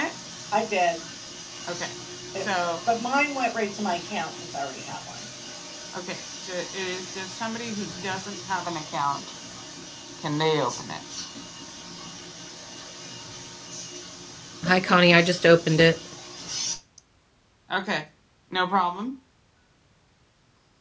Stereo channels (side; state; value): both; identical; correlation 1.00